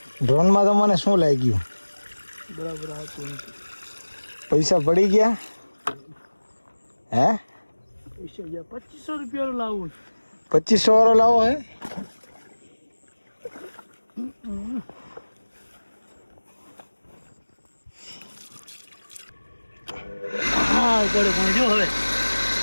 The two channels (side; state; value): both; inverted; correlation -1.00